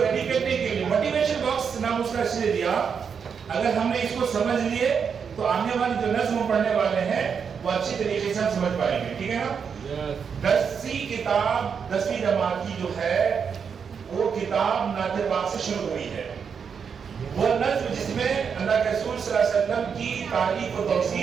کرنے کے لیے موٹیویشن باکس نام اس کا اس لیے دیا. اگر ہم نے اس کو سمجھ لیے تو آنے والے جو نظم پڑھنے والے ہیں وہ اچھی طریقے سے ہم سمجھ پائیں گے. ٹھیک ہے نا. 10ویں کتاب 10ویں جماعت کی جو ہے وہ کتاب نعت پاک سے شروع ہوئی ہے. وہ نظم جس میں اللہ کے رسول صلی اللہ علیہ وسلم کی تعریف و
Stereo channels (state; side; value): quieter; left; 6.6 dB